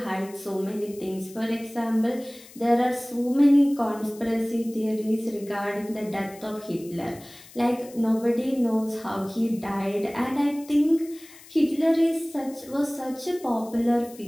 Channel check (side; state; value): left; noise; hiss, 21 dB below the sound